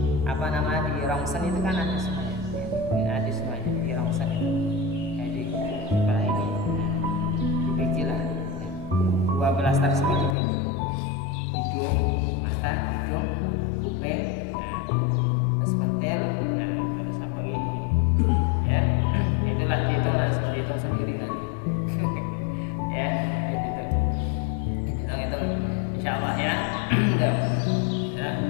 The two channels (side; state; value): right; drops out; at 10.4 s